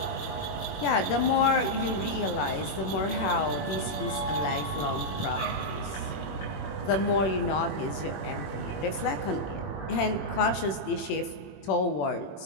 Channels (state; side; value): late; right; 21 ms